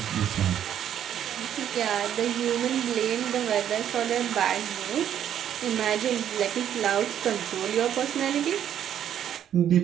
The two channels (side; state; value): left; quieter; 10.0 dB